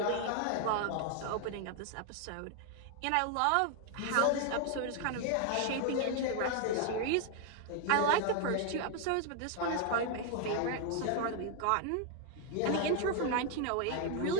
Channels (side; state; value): both; different; correlation 0.01